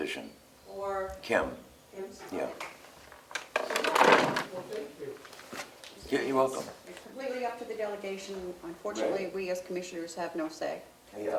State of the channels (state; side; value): identical; both; correlation 1.00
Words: Or Kim, Kim's? yeah. Well, thank you. Yeah, you're welcome. It's completely up to the delegation. Unfortunately, Right. we as commissioners have no say. Yeah,